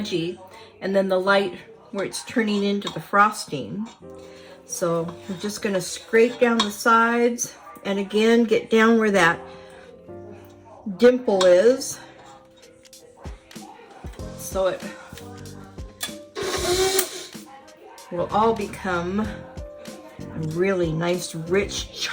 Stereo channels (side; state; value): both; identical; correlation 1.00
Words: and then the light where it's turning into the frosting. So I'm just going to scrape down the sides and again get down where that dimple is, so it will all become a really nice rich